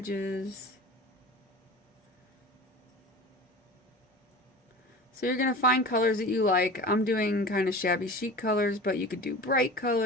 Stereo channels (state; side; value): normal; both; correlation 0.35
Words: So you're going to find colors that you like. I'm doing kind of shabby chic colors, but you could do bright